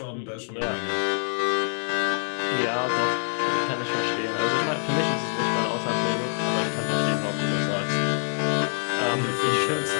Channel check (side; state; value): right; silent; digital silence